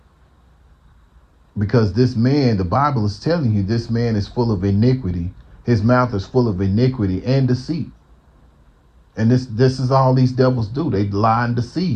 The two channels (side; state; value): both; identical; correlation 1.00